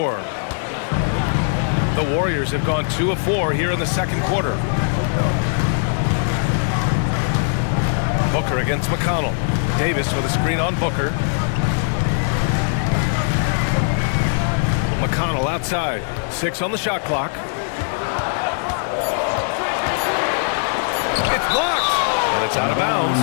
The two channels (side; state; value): right; silent; digital silence